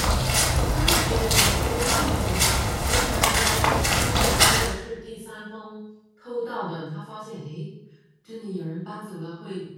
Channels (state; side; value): identical; both; correlation 1.00